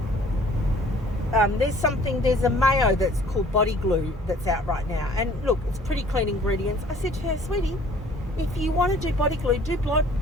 there's a mayo that's called body glue that's out right now. And look, it's pretty clean ingredients. I said to her, sweetie, if you want to do body glue, do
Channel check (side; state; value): both; normal; correlation 0.54